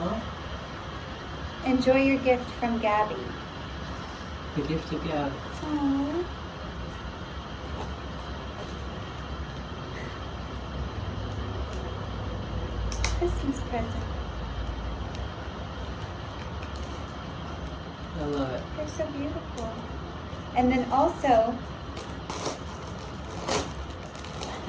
Enjoy your gift from Gabby. The gift of God. Aww. Christmas present. I love it. They're so beautiful. And then also,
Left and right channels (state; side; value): identical; both; correlation 1.00